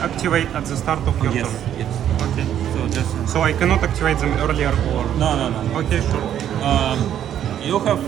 at the start of your Yes, turn. yes. Okay. So just, So I cannot activate them earlier or... no. Okay, sure. You have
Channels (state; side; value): quieter; left; 10.3 dB